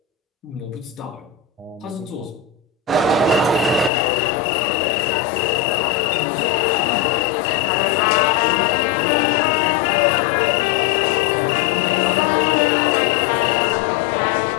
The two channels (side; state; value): right; drops out; at 3.9 s